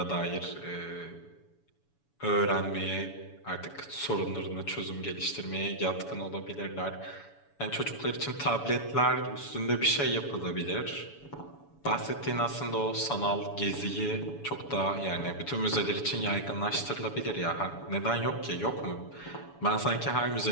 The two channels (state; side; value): late; right; 7.0 ms